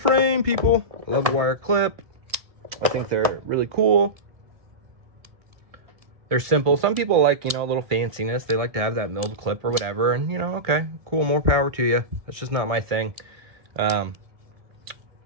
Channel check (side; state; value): left; late; 1.7 ms